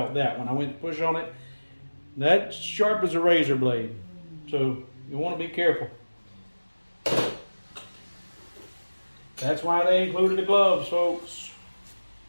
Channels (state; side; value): inverted; both; correlation -1.00